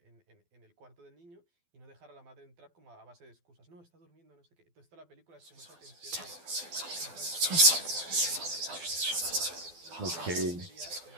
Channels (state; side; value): late; left; 12 ms